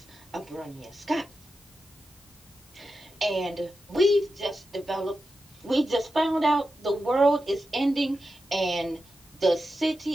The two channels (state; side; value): normal; both; correlation 0.90